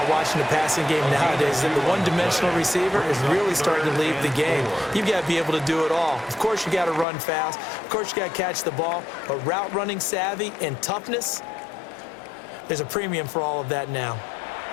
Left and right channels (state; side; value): drops out; right; at 7.1 s